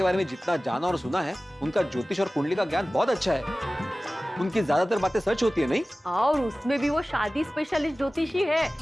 बारे में जितना जाना और सुना है, उनका ज्योतिष और कुंडली का ज्ञान बहुत अच्छा है। उनकी ज्यादातर बातें सच होती है, नहीं? और उसमें भी वो शादी स्पेशलिस्ट ज्योतिषी है।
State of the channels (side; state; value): both; normal; correlation 0.97